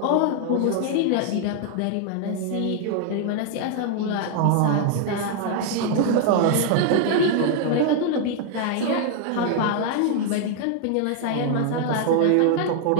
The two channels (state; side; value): different; both; correlation 0.00